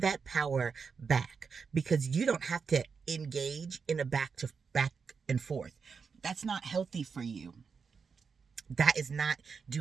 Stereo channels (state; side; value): quieter; left; 5.6 dB